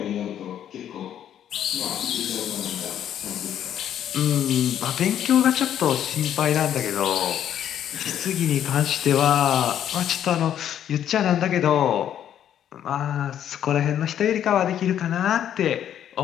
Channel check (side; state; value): right; quieter; 10.2 dB